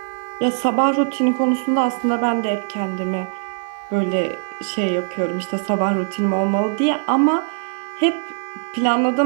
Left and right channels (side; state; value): left; silent; digital silence